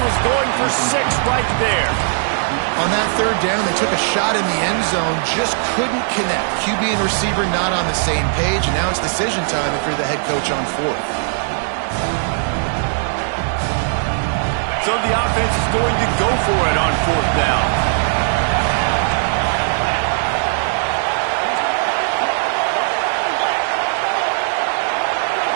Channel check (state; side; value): silent; left; digital silence